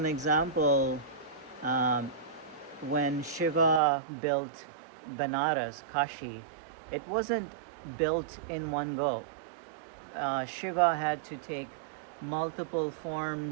example, when Shiva built Banaras, Kashi, it wasn't built in one go. Shiva had to take multiple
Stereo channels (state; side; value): drops out; left; at 3.8 s